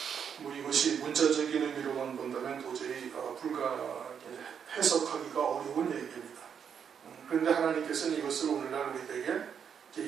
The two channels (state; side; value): quieter; left; 7.5 dB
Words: 뭐 이것이 문자적인 의미로만 본다면 도저히 해석하기가 어려운 얘기입니다. 그런데 하나님께서는 이것을 오늘날